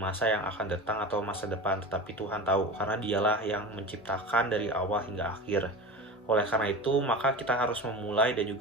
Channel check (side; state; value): both; normal; correlation 0.31